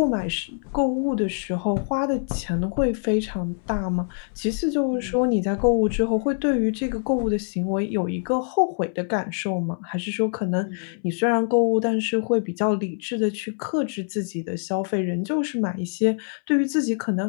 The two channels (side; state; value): right; silent; 62 dB below the other